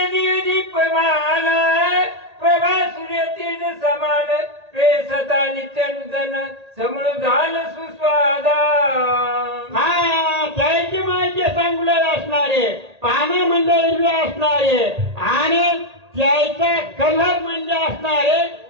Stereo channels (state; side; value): late; left; 1.8 ms